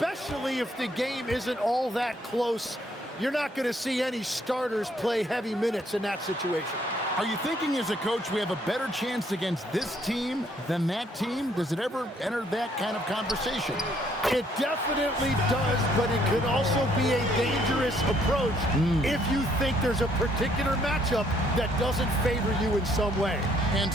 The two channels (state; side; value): normal; both; correlation 0.67